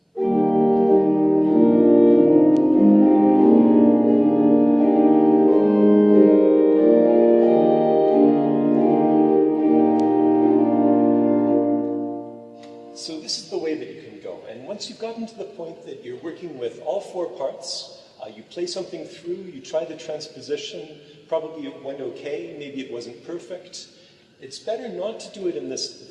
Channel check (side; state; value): both; identical; correlation 1.00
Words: So this is the way that you can go. And once you've gotten to the point that you're working with all four parts, you play something through, you try the transposition, probably it went okay, maybe it wasn't perfect. It's better not to do it in the